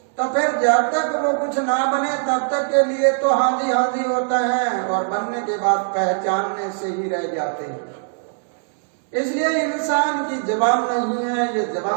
तो फिर जब तक वो कुछ ना बने तब तक के लिए तो हाजी हाजी होता है, और बनने के बाद पहचानने से ही रह जाते हैं। इसलिए इंसान की जबान नहीं है, ये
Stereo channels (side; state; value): left; silent; 65 dB below the other